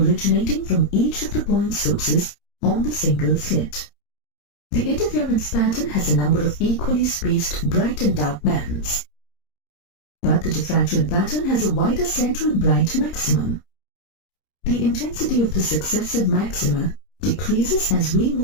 from each of the point sources on the single slit. The interference pattern has a number of equally spaced bright and dark bands, but the diffraction pattern has a wider central bright maximum. The intensity of the successive maxima decreases as we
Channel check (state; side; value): late; right; 30 ms